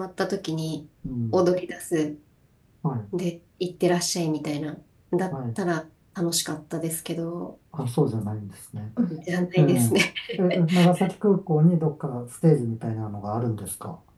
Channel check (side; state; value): both; identical; correlation 1.00